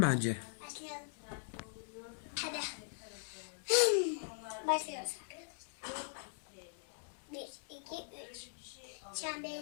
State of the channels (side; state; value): right; silent; digital silence